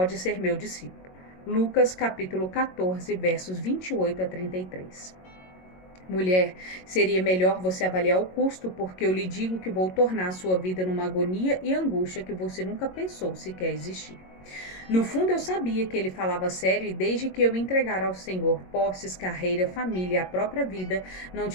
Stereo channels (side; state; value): right; late; 22 ms